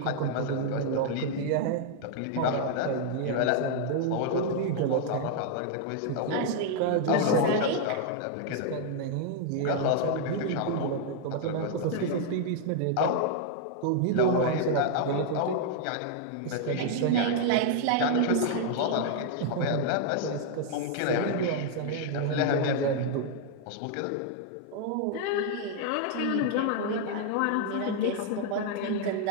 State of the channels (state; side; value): different; both; correlation 0.00